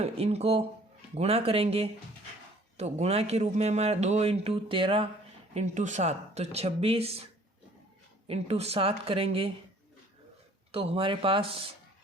गुणा करेंगे तो गुणा के रूप में हमारा 2 इंटू 13 इंटू 7, तो 26 इंटू 7 करेंगे तो हमारे पास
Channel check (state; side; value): normal; both; correlation 0.55